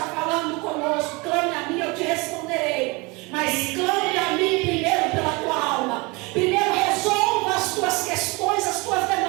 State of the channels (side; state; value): left; quieter; 26.5 dB